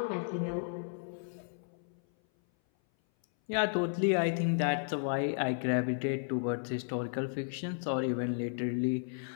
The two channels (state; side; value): silent; right; 55 dB below the other